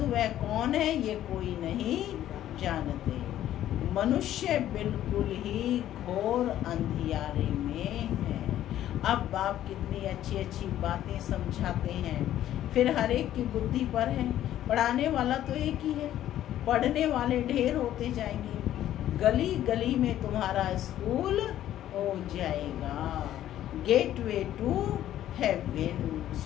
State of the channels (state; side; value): quieter; right; 12.3 dB